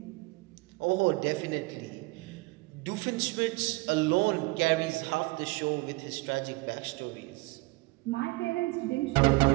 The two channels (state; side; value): quieter; left; 24.3 dB